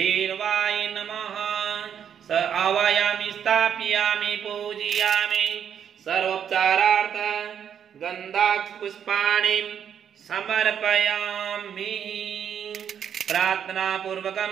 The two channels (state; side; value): quieter; left; 8.5 dB